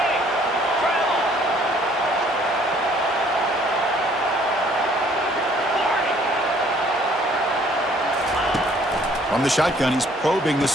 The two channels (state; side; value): normal; both; correlation 0.60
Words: From the shotgun, he's probing the